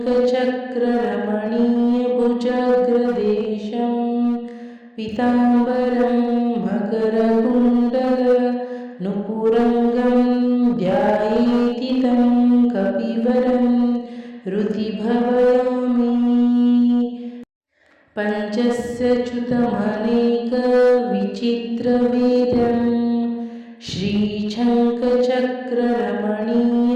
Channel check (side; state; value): both; identical; correlation 1.00